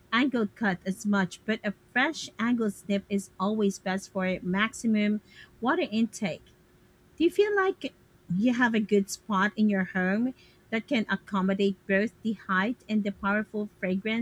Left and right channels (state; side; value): identical; both; correlation 1.00